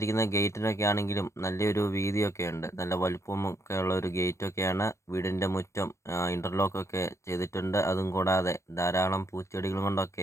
ഗേറ്റിനൊക്കെ ആണെങ്കിലും നല്ലൊരു വീതിയൊക്കെ ഉണ്ട്. നല്ല വലുപ്പമൊക്കെ ഉള്ള ഒരു ഗേറ്റൊക്കെയാണ്. വീടിൻ്റെ മുറ്റം ഇൻ്റർലോക്കൊക്കെ ചെയ്തിട്ടുണ്ട്. അതും കൂടാതെ ധാരാളം പൂച്ചെടികൾ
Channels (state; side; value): late; right; 0.14 ms